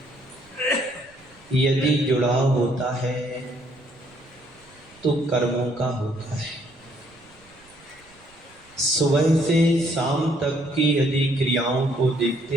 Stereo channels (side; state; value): right; noise; rumble, 29 dB below the sound